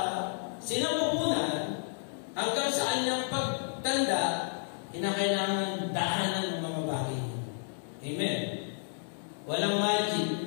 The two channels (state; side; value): silent; right; digital silence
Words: sinapupunan hanggang sa kanyang pagtanda, kinakailangan daanan ng mga bagay. Amen? Walang magic.